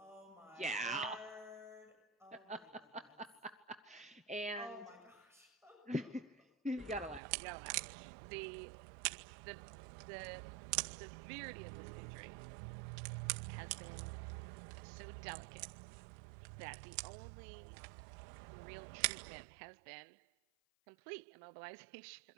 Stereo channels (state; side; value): drops out; left; at 7.2 s